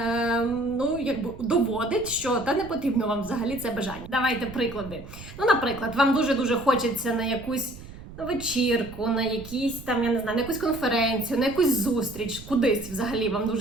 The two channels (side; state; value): right; noise; rumble, 15 dB below the sound